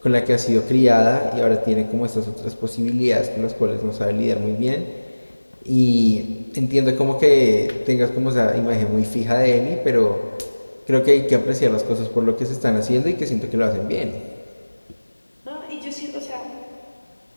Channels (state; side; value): inverted; both; correlation -1.00